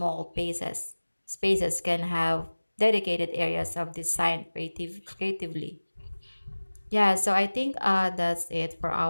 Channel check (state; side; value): inverted; both; correlation -1.00